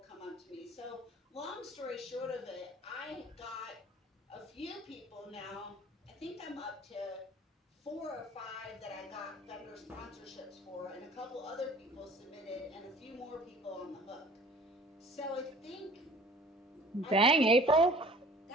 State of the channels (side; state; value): both; normal; correlation 0.49